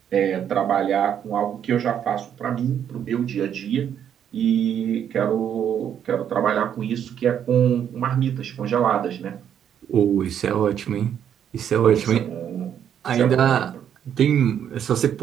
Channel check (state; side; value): quieter; left; 9.1 dB